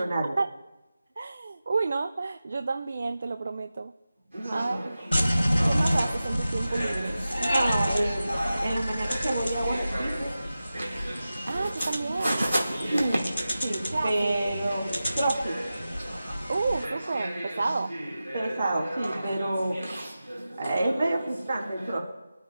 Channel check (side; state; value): both; inverted; correlation -0.94